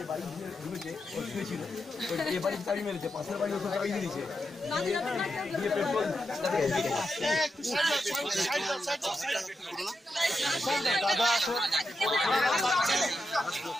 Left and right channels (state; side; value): normal; both; correlation 0.86